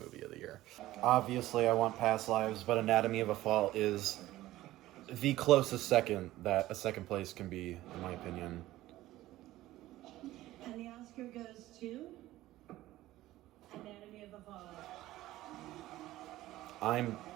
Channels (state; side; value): quieter; left; 15.9 dB